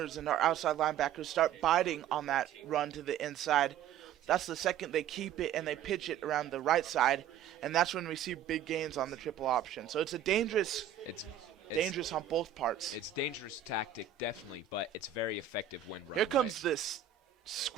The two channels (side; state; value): left; quieter; 9.2 dB